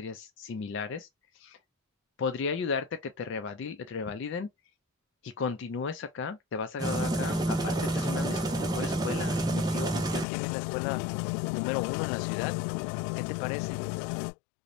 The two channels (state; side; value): drops out; right; at 10.2 s